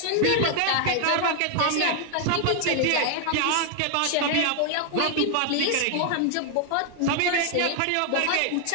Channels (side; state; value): both; different; correlation 0.00